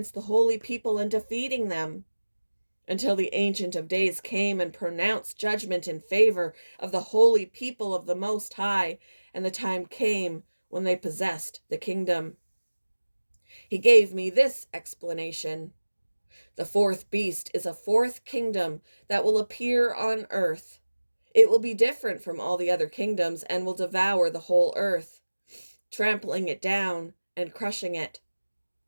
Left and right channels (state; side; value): inverted; both; correlation -1.00